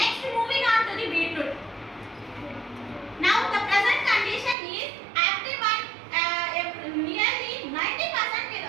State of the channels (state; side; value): drops out; left; at 4.5 s